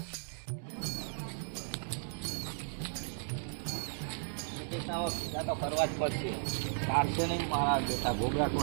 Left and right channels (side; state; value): left; silent; digital silence